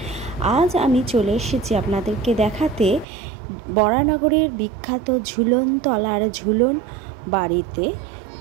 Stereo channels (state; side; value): drops out; left; at 3.1 s